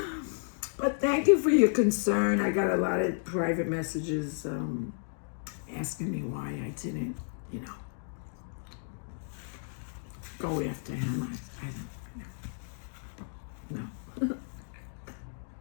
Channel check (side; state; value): right; silent; digital silence